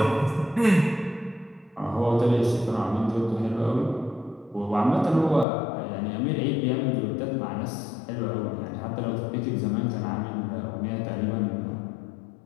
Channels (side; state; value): right; drops out; at 5.5 s